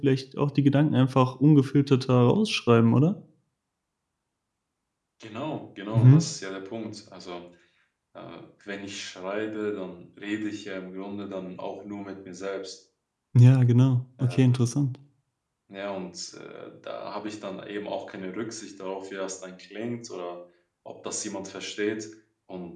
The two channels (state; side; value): identical; both; correlation 1.00